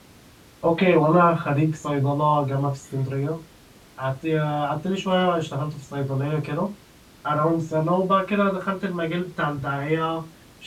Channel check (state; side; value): identical; both; correlation 1.00